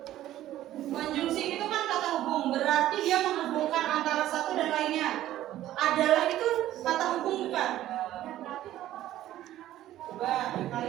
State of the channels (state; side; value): quieter; left; 13.6 dB